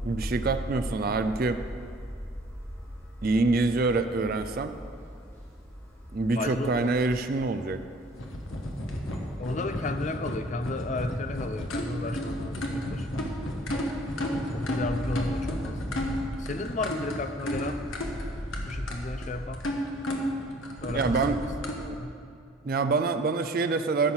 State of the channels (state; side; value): normal; both; correlation 0.54